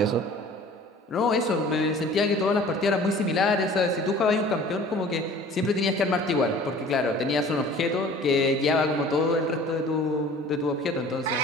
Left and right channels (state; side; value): normal; both; correlation 0.47